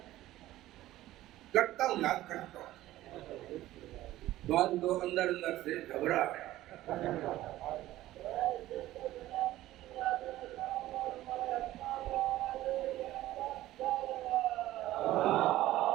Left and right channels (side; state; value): left; quieter; 15.4 dB